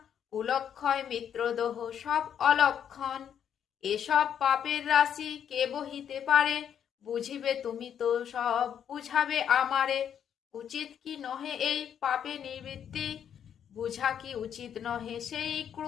কুলক্ষয় মিত্রদোহ সব অলক্ষণ। এসব পাপের রাশি কে বহিতে পারে, বুঝিবে তুমি তো সব বুঝাবে আমারে। উচিত কি নহে এই পাপে নিবৃত্তি, বুঝা কি উচিত নহে সেই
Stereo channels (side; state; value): right; quieter; 8.8 dB